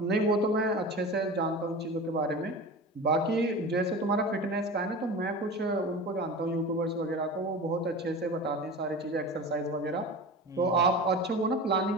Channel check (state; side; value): normal; both; correlation 0.32